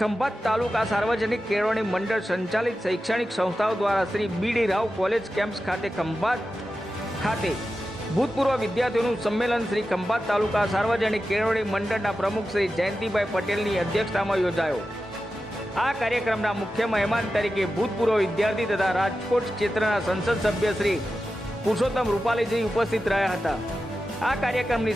ખંભાત તાલુકા સાર્વજનિક કેળવણી મંડળ સંચાલિત શૈક્ષણિક સંસ્થાઓ દ્વારા શ્રી બી.ડી. રાવ કોલેજ કેમ્પસ ખાતે ખંભાત ખાતે ભૂતપૂર્વ વિદ્યાર્થીઓનું સંમેલન શ્રી ખંભાત તાલુકા સાર્વજનિક કેળવણી મંડળના પ્રમુખ શ્રી જયંતિભાઈ પટેલની અધ્યક્ષતામાં યોજાયો। આ કાર્યક્રમના મુખ્ય મહેમાન તરીકે ભૂતપૂર્વ વિદ્યાર્થી તથા રાજકોટ ક્ષેત્રના સંસદ સભ્ય શ્રી પુરુષોત્તમ રૂપાલીજી ઉપસ્થિત રહ્યા હતા। આ કાર્યક્રમની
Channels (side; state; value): both; normal; correlation 0.92